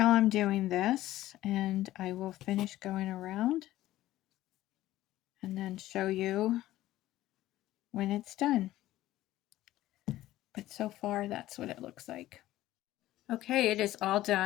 I'm doing this, and I will finish going around and then show you when it's done. But so far, that's what it looks like. Okay, it is all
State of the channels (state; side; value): quieter; right; 15.1 dB